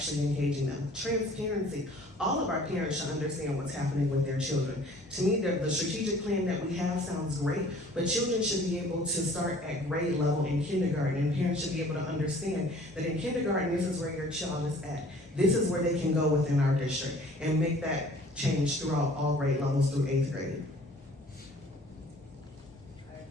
engaging them. Transparency. All of our parents should understand what's happening with their children. To me, the strategic plan that we have sounds great, but children should be able to start at grade level in kindergarten, and parents should be able to understand that in kindergarten, this is where your child is at. This is where they can go within our district, and make that change throughout all grade levels through 8th grade.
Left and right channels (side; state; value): both; normal; correlation 0.51